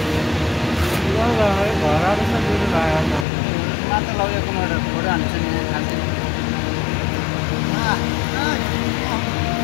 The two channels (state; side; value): drops out; right; at 3.2 s